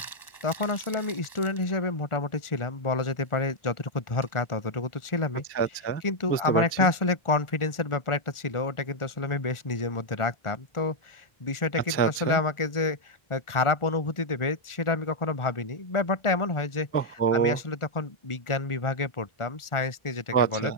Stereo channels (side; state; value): right; late; 1.4 ms